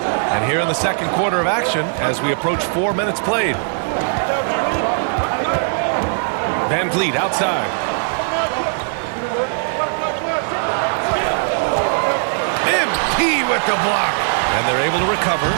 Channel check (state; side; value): silent; left; 67 dB below the other